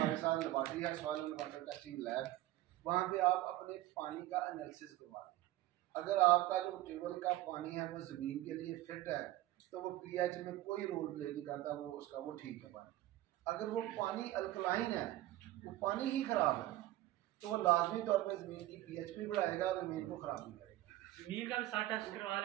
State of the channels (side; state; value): left; quieter; 15.8 dB